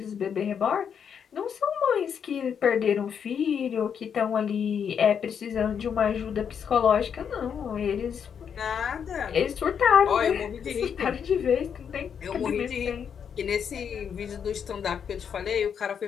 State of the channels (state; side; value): quieter; right; 7.5 dB